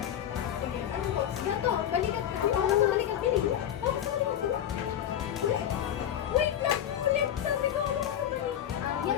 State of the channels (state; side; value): quieter; right; 10.4 dB